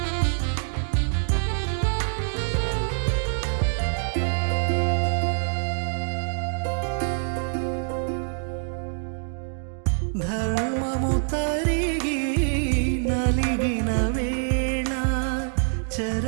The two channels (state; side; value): silent; left; 61 dB below the other